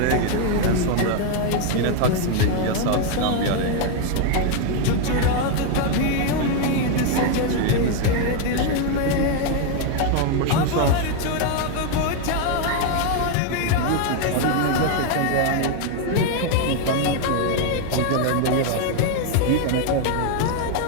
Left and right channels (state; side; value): different; both; correlation 0.01